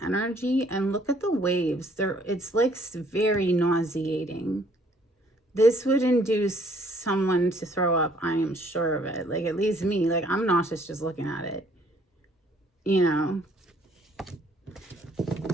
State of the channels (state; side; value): normal; both; correlation 0.62